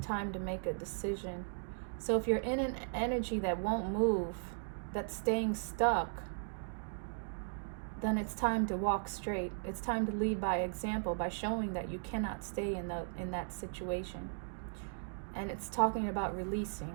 to make a decision. So if you're in an energy that won't move, that's staying stuck, then it's time to walk straight. It's time to lead by example, by showing that you cannot stay in that situation. And it's talking about releasing.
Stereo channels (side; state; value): left; silent; digital silence